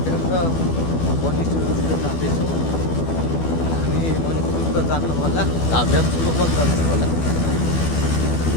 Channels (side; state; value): right; late; 12 ms